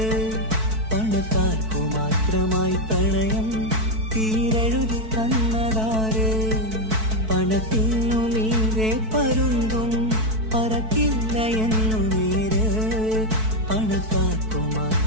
പണക്കാർക്കു മാത്രമായി പ്രണയം തീരെഴുതി തന്നതാര്? പണത്തിനു മീതെ പരുന്തും പറക്കില്ല എന്നു നേര്. പണക്കാർക്കു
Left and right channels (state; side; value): late; left; 4.6 ms